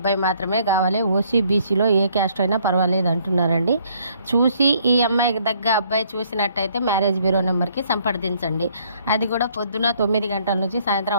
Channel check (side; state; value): both; inverted; correlation -0.65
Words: మాత్రమే కావాలి. ఓసీ బీసీలో ఏ క్యాస్ట్ అయినా పర్వాలేదు అంటున్నారండి. చూసి ఈ అమ్మాయికి దగ్గర అబ్బాయి చూసినట్టయితే మ్యారేజ్ బ్యూరో నెంబర్కి సంప్రదించండి. అది కూడా పొద్దున 9 గంటల నుంచి